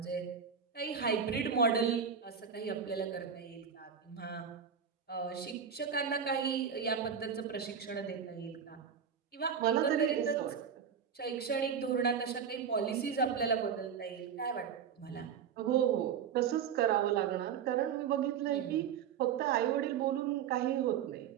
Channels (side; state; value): left; quieter; 7.4 dB